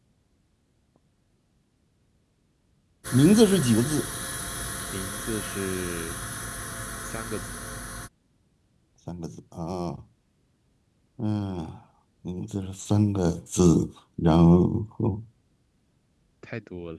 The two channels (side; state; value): both; identical; correlation 1.00